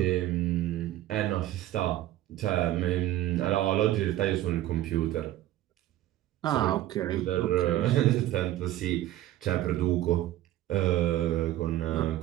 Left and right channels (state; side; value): quieter; left; 14.1 dB